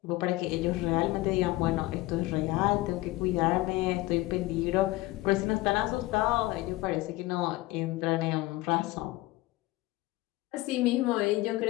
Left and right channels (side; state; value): right; quieter; 19.2 dB